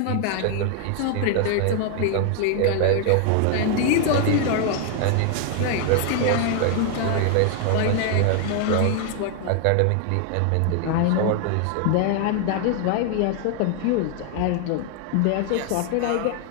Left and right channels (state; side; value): different; both; correlation 0.00